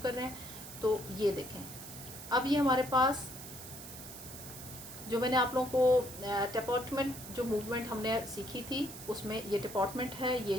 कर रहे हैं। तो ये देखें, अब ये हमारे पास जो मैंने आप लोगों को डिपार्टमेंट जो मूवमेंट हमने सीखी थी उसमें ये डिपार्टमेंट है, ये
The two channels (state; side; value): noise; right; hiss, 13 dB below the sound